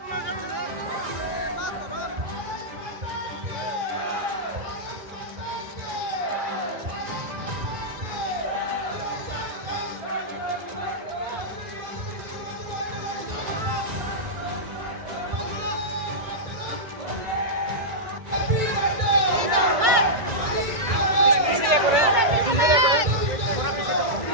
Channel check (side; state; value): left; late; 1.9 ms